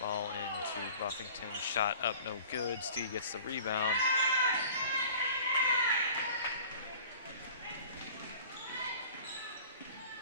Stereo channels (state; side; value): inverted; both; correlation -0.46